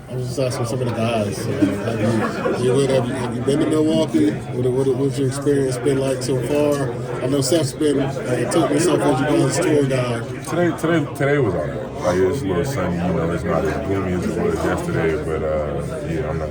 was just asking some of the guys. Have you been to Milwaukee? What's your experience been like so far? I know Seth's been took himself as you guys' tour guide. Today was all right. Like, it's a little sunny, it's not as gloomy as it was yesterday, but I'm not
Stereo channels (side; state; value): both; identical; correlation 1.00